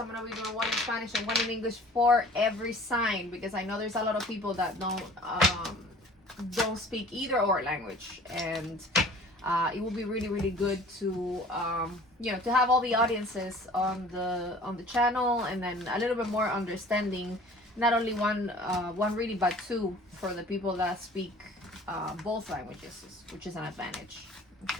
going to be doing one in Spanish and one in English for every sign, because I know there's a lot of people that don't speak either or language, and it will be really good to to have all the audiences on the channel, and then a little bit more understanding, not only one reading but 2 for the people that speak both languages, which is an advantage.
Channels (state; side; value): normal; both; correlation 0.48